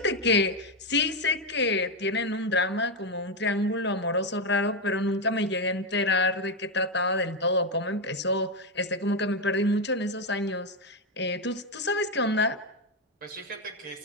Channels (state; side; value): normal; both; correlation 0.06